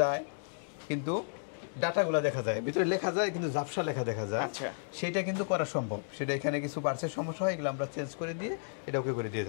কিন্তু ডাটাগুলো দেখা যায়, ভিতরে লেখা যায় কিন্তু ঝাপসা লেখা দেখা যায়, সেটা কিন্তু করা সম্ভব। সেটা এখানে কিছু পার্টসের সমস্যা হয়, এগুলো আমরা চেঞ্জ করে দিয়ে এটা ওকে করে দিয়ে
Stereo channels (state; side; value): silent; right; digital silence